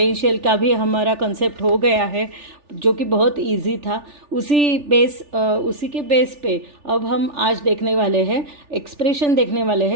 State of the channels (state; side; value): late; left; 3.4 ms